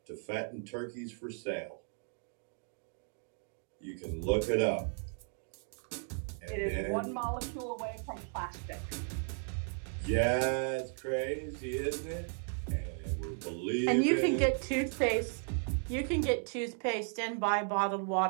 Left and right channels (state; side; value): silent; left; 54 dB below the other